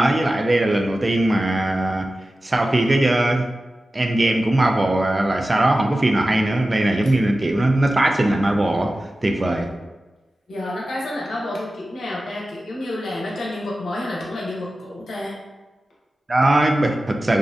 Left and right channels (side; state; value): both; normal; correlation 0.94